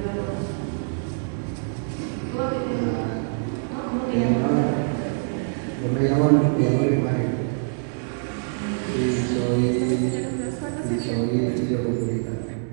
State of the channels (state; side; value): silent; left; digital silence